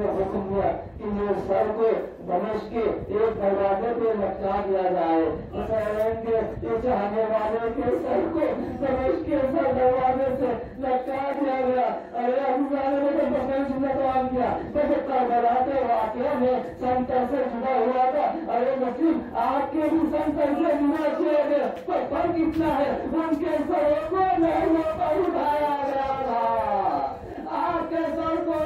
حکم دیا کہ یہ سر کو دمشق کے ایک دروازے پہ لٹکا دیا جائے. حسین کے یہ چاہنے والے کے سر کو دمشق کے سر دروازے سے لٹکا دیا گیا. ارے حضرت نے تو بسن سنتوان کیا. جب کربلا کے واقعہ میں سنتر سے جدا ہوا تھا. ارے مسلم آپ کے بھی سنتر سے جدا کیے گئے, تو فرق اتنا ہے ان کے سروں کو محلوں پر اٹھایا گیا تھا. آپ کے سر کو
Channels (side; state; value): both; identical; correlation 1.00